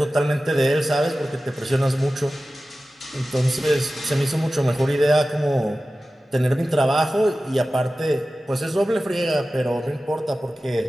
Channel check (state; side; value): normal; both; correlation 0.95